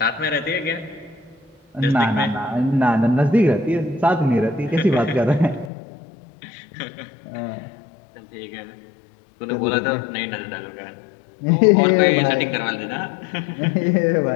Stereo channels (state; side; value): drops out; right; at 5.7 s